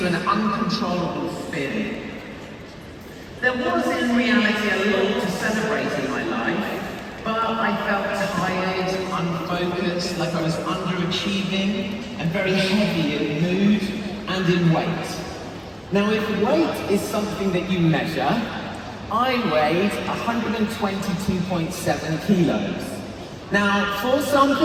an uncontrollable spin. There was in reality a lot to celebrate in my life, but I felt tired, unfocused, like I was underachieving, and very heavy in mood and in weight. Now, if weight is something that you measure, I weighed 122.7 kilos. Now, for some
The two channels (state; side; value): identical; both; correlation 1.00